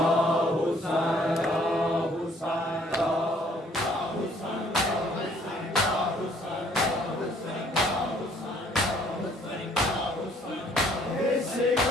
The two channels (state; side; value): normal; both; correlation 0.61